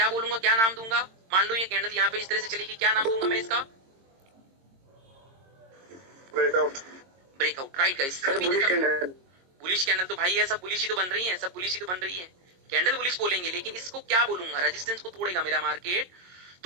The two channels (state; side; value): late; left; 22 ms